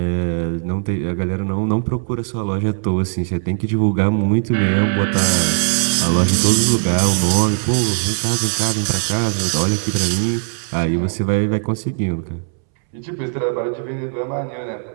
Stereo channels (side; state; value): left; silent; 66 dB below the other